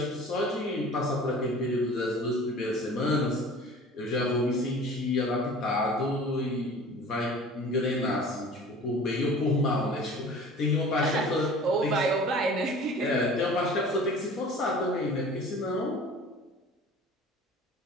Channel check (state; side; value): normal; both; correlation 0.44